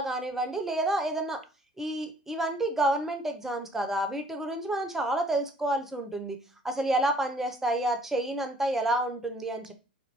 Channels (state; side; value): normal; both; correlation 0.60